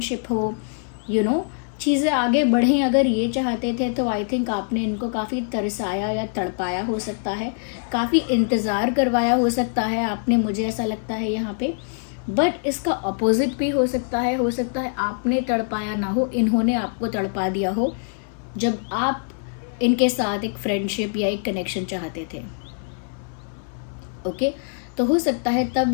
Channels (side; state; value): right; silent; 63 dB below the other